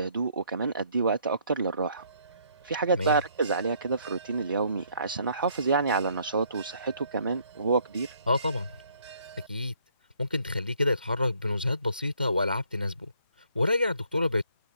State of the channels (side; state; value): both; inverted; correlation -0.65